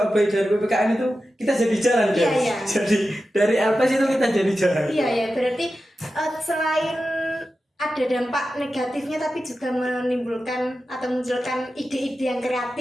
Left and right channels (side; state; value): both; normal; correlation 0.92